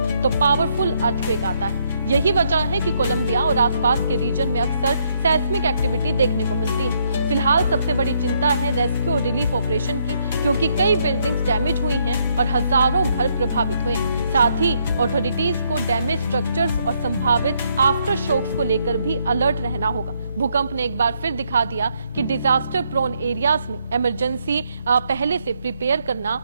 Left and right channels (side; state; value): both; inverted; correlation -0.73